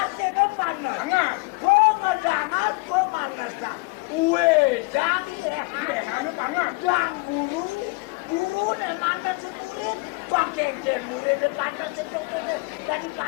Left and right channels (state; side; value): quieter; right; 26.7 dB